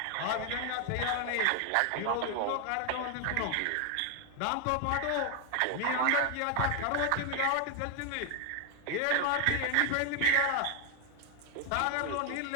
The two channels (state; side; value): different; both; correlation 0.01